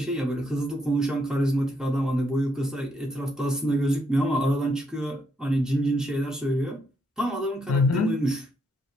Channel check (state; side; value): normal; both; correlation 0.76